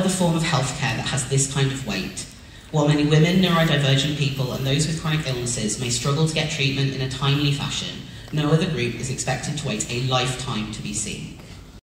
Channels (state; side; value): identical; both; correlation 1.00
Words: form of healthcare that has this kind of wait. While many women, neurodivergent people and those with chronic illnesses may struggle to get treatment in a timely fashion, no other group is expected to wait a lifetime to be seen.